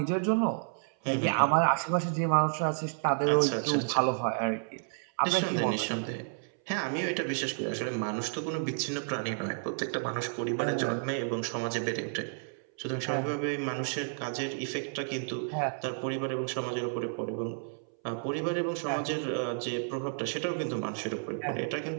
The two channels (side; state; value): left; silent; 57 dB below the other